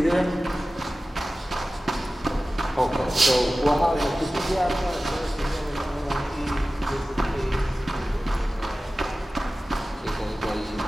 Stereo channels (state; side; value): normal; both; correlation 0.96